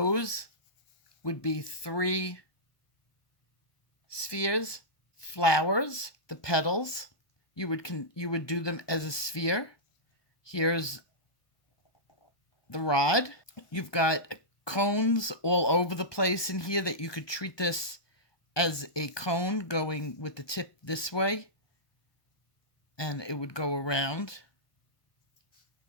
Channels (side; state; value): right; late; 1.2 ms